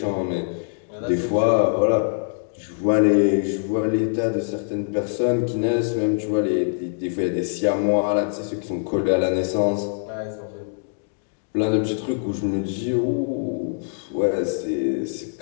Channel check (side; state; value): right; silent; digital silence